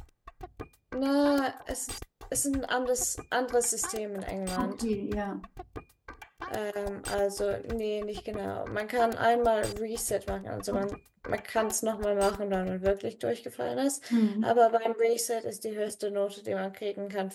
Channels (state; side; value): identical; both; correlation 1.00